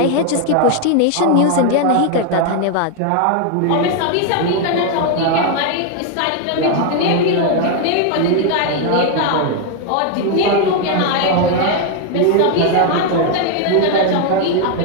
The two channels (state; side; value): different; both; correlation 0.01